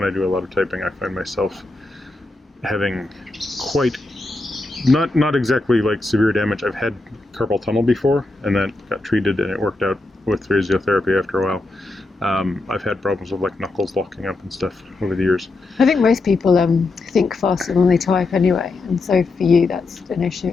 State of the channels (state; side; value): quieter; right; 3.2 dB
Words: I do a lot of typing, I find myself having quite Not exactly like severe damage. I've had carpal tunnel before, and that got treated, and it worked out with physiotherapy after a while. I've had problems with like knuckles locking up and stuff over the years. I think most people think faster than they type anyway, and so for you that's an issue.